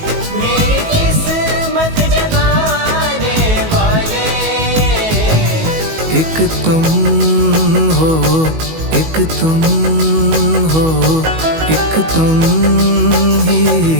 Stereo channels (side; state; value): left; late; 19 ms